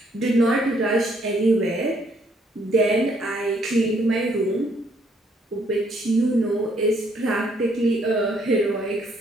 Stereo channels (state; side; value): normal; both; correlation 0.68